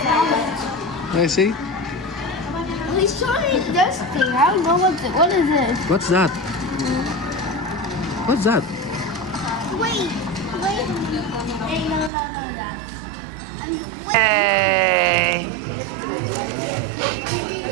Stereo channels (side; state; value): left; drops out; at 12.1 s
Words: I see. He's showing this thing. I don't know what is this. What's that? Wait. Hey, no. Hey!